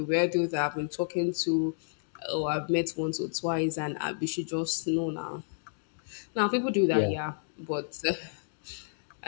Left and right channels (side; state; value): right; silent; digital silence